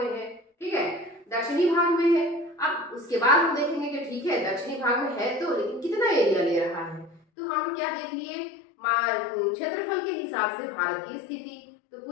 है। ठीक है, दक्षिणी भाग में है। अब उसके बाद हम देखेंगे कि ठीक है दक्षिणी भाग में है तो, लेकिन कितना एरिया ले रहा है। तो हम लोग क्या देख लिए क्षेत्रफल के हिसाब से भारत की स्थिति, तो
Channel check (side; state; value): right; drops out; at 7.2 s